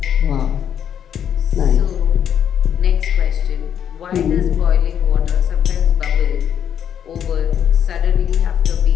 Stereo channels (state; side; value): quieter; right; 8.9 dB